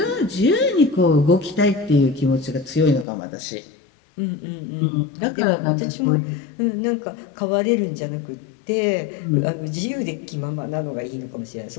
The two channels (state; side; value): drops out; right; at 3.1 s